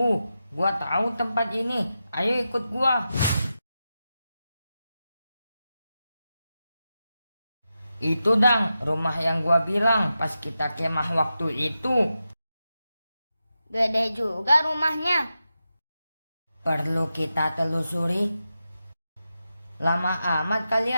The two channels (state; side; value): inverted; both; correlation -0.90